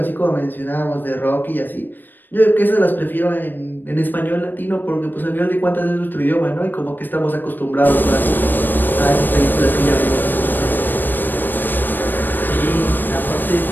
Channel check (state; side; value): late; right; 0.092 ms